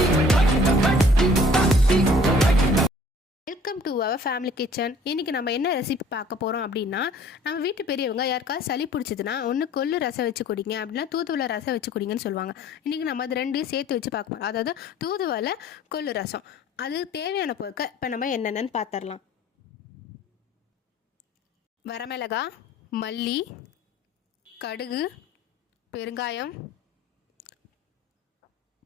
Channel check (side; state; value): both; normal; correlation 0.53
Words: Welcome to our family kitchen. இன்றைக்கி நம்ம என்ன ரெசிபி பார்க்க போகிறோம் அப்படின்னா, நம்ம வீட்டு பெரியவங்க யாருக்காவது சளி பிடிச்சதுன்னா ஒன்று கொள்ளு ரசம் வச்சு குடிங்க, அப்படின்னா தூதுவளை ரசம் வச்சு குடிங்கன்னு சொல்லுவாங்க. இன்றைக்கி நம்ம அது ரெண்டையும் சேர்த்து வச்சு பார்க்க போகிறோம். அதாவது தூதுவளை கொள்ளு ரசம். அது தேவையான பொருட்கள் இப்போ நம்ம என்னென்னு பார்த்துடலாம். வரமிளகாய், மல்லி, கடுகு, பெருங்காயம்,